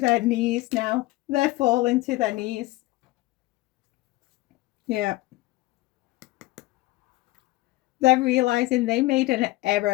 knees now. They're falling to their knees. Yeah. They're realizing they made an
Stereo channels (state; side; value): quieter; right; 19.2 dB